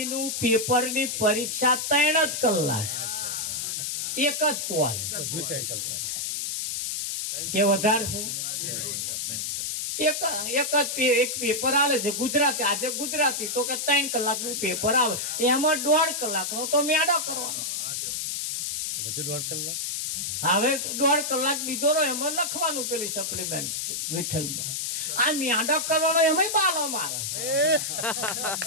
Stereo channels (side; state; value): left; noise; hiss, 2 dB below the sound